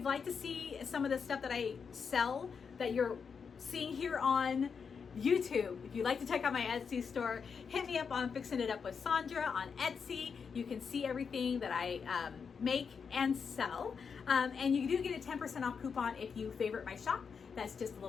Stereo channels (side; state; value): right; quieter; 6.0 dB